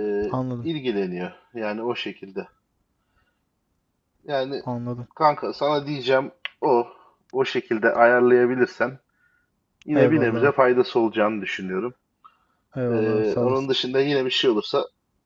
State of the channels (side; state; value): both; identical; correlation 1.00